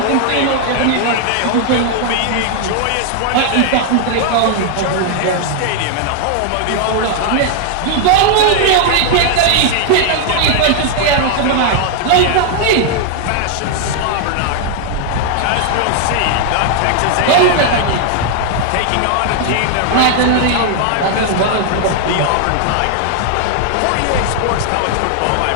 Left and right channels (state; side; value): different; both; correlation 0.00